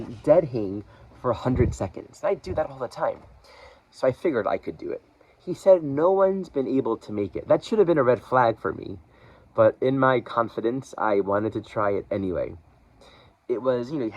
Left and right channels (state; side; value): identical; both; correlation 1.00